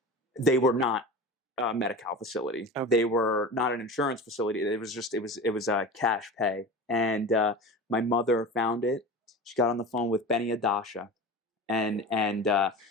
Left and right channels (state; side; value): normal; both; correlation 0.32